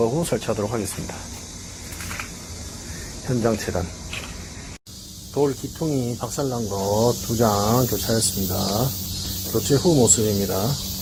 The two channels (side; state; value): both; identical; correlation 1.00